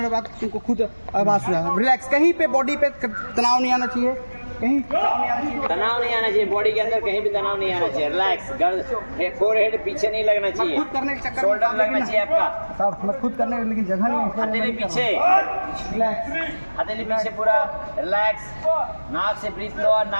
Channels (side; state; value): both; inverted; correlation -1.00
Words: बाद तुमको खुद आवाज़ सुना। रिलैक्स, कहीं पे बॉडी पे तनाव नहीं आना चाहिए, कहीं तनाव नहीं आना चाहिए, बॉडी के अंदर कहीं भी तनाव नहीं आना चाहिए। रिलैक्स, फोरहेड पीछे नहीं लगना चाहिए, खुद करने के चक्कर शोल्डर लगना चाहिए आपका। सब मैं खुद करने, लेकिन जगह नहीं है। हथेली पीछे, रिलैक्स, हथेली पीछे पूरा रिलैक्स। नाक से ब्रीथ लो और